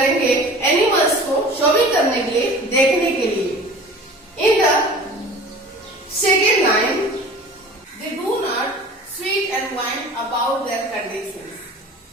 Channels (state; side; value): normal; both; correlation 0.42